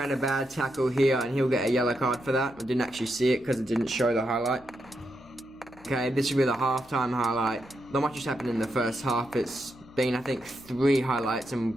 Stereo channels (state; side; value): noise; left; hum, 26 dB below the sound